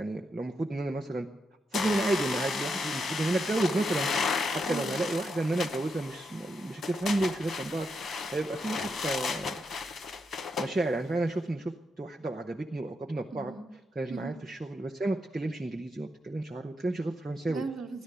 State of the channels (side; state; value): both; normal; correlation 0.83